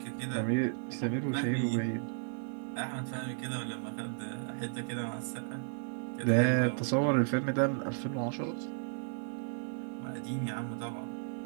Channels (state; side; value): silent; left; digital silence